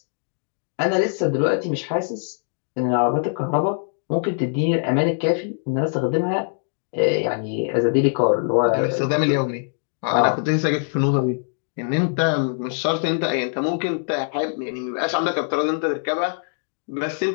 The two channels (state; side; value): silent; right; digital silence